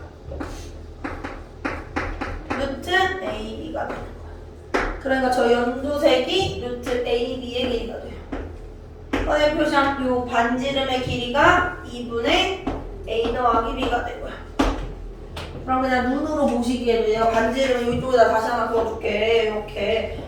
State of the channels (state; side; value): identical; both; correlation 1.00